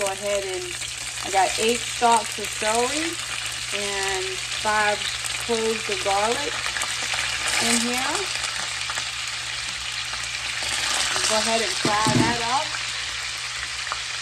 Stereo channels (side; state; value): both; identical; correlation 1.00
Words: go ahead and I got 8 stalks of celery and 5 cloves of garlic in here. Go ahead and fry that up.